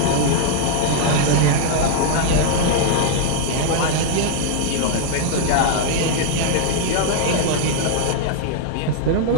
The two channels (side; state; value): both; different; correlation 0.00